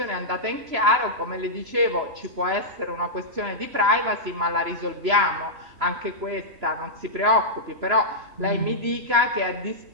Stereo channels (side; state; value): left; late; 3.0 ms